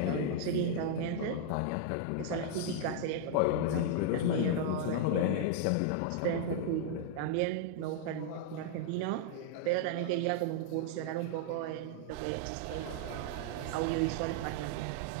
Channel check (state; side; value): different; both; correlation -0.01